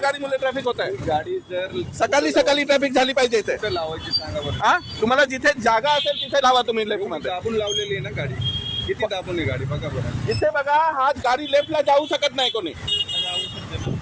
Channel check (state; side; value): identical; both; correlation 1.00